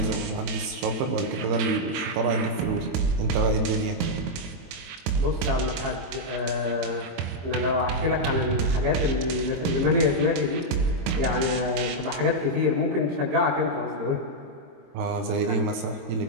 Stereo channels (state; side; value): late; left; 22 ms